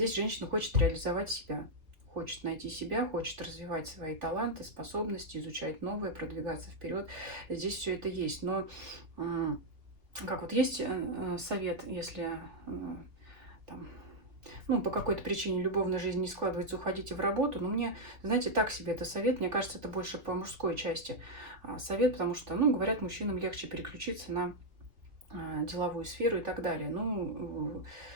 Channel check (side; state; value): left; late; 2.9 ms